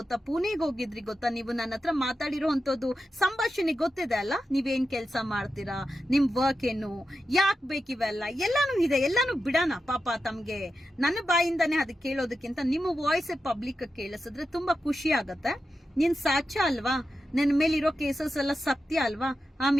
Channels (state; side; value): normal; both; correlation 0.90